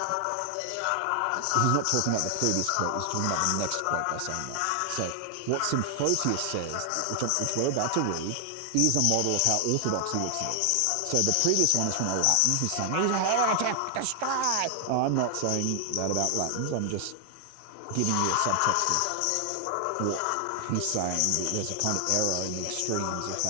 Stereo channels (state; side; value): different; both; correlation 0.00